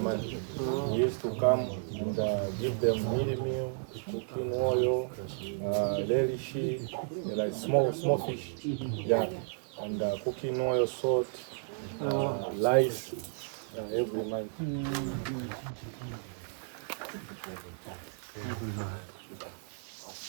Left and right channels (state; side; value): silent; left; digital silence